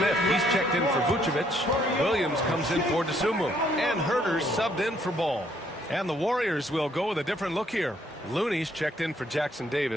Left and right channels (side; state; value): both; normal; correlation 0.68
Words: he's checked in for Vucevic. Williams comes in for DeSumo. And Herter's subbed in for Ball. And the Warriors will go with a different look here. Looney's checked in for Jackson